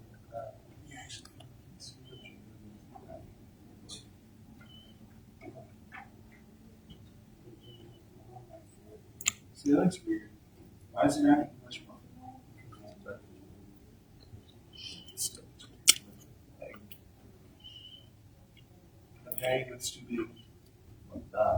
See, that looks weird. Why is it not much more? Okay, it's too big.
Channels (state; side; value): identical; both; correlation 1.00